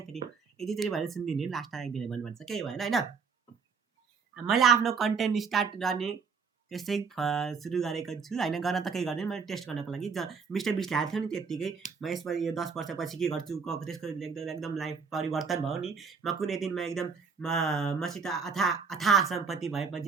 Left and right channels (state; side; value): quieter; left; 5.6 dB